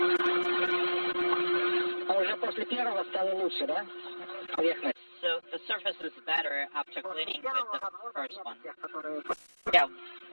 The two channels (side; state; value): both; inverted; correlation -1.00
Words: So the surface is better after cleaning with the first one. Yeah,